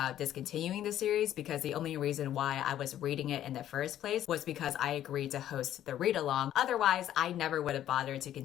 discontinuing the series, because the only reason why I was reading it in the first place was because I agreed to host the read along. Otherwise, I never would have bothered to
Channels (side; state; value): right; quieter; 11.8 dB